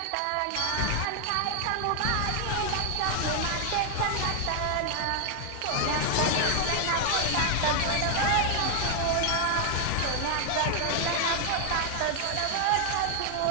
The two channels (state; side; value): different; both; correlation 0.00